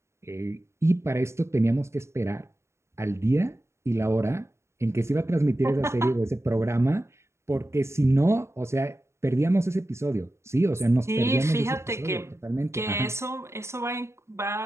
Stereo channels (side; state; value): left; late; 0.13 ms